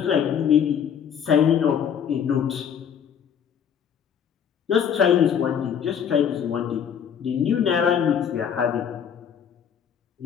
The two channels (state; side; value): quieter; right; 8.1 dB